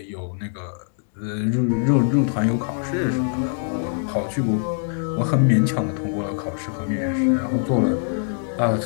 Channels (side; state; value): right; silent; digital silence